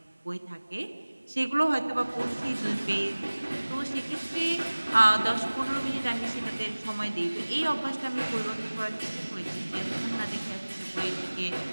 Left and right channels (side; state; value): both; inverted; correlation -1.00